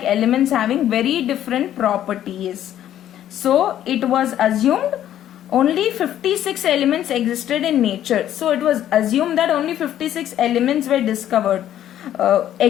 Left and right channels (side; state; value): right; quieter; 11.5 dB